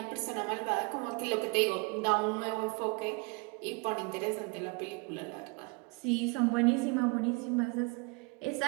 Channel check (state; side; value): quieter; left; 29.5 dB